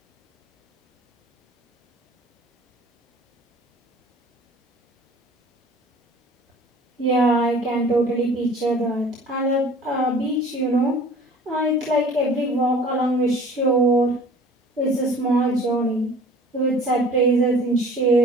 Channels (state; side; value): normal; both; correlation 0.48